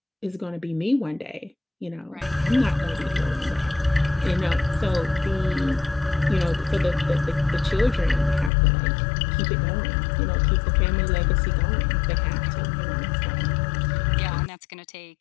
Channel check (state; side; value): drops out; right; at 8.5 s